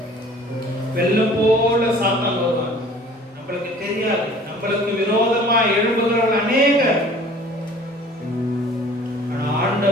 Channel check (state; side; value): normal; both; correlation 0.49